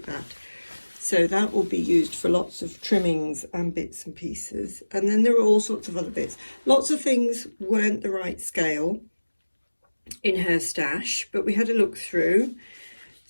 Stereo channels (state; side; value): inverted; both; correlation -1.00